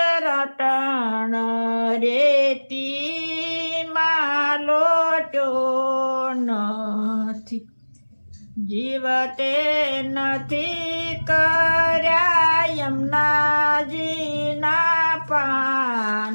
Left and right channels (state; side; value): inverted; both; correlation -1.00